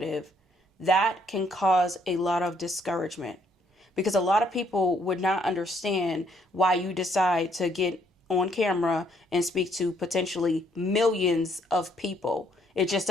that can cause a lot of discouragement. Because a lot of people would not understand why you decide to get on camera and speak to potentially millions of people. It just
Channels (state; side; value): normal; both; correlation 0.69